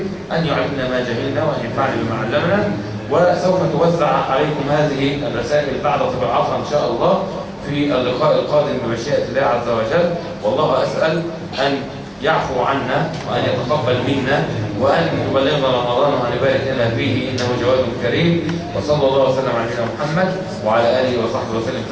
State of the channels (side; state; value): both; identical; correlation 1.00